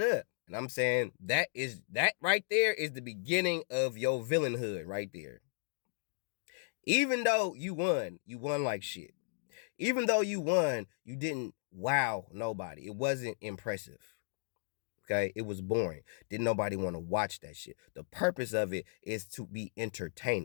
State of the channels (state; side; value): silent; right; digital silence